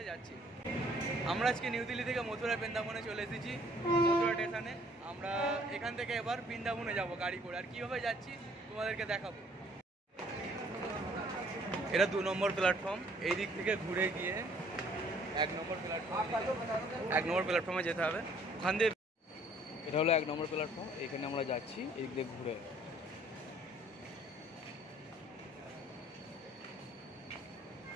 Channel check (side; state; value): both; normal; correlation 0.59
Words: যাচ্ছি। আমরা আজকে নিউ দিল্লি থেকে মথুরা বৃন্দাবনে চলে এসেছি, মথুরা স্টেশনে। আমরা এখান থেকে এবার বৃন্দাবনে যাব গাড়ি করে, আর কীভাবে যাচ্ছি তোমাদেরকে দেখাবো। এটা 2 নম্বর প্ল্যাটফর্ম, এই দিক থেকে ঘুরে গিয়ে 1 নম্বর প্ল্যাটফর্মে যেতে হবে। ওখান দিয়ে এটা হলো 1 নম্বর প্ল্যাটফর্ম, এখানে আমরা যাচ্ছি এই দিক দিয়ে ঘুরে।